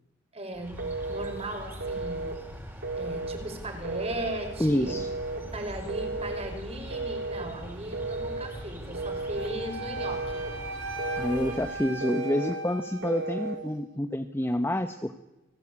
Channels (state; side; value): normal; both; correlation 0.46